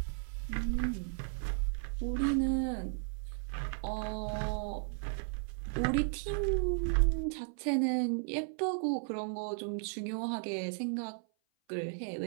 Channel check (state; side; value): silent; left; 54 dB below the other